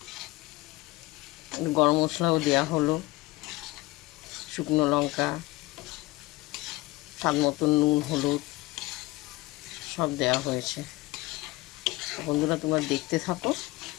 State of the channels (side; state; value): right; quieter; 20.4 dB